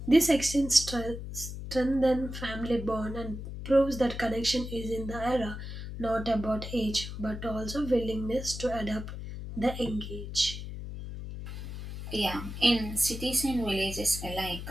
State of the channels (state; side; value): noise; left; hum, 8 dB below the sound